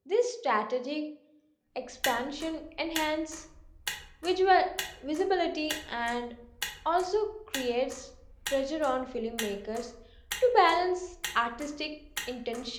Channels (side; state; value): both; identical; correlation 1.00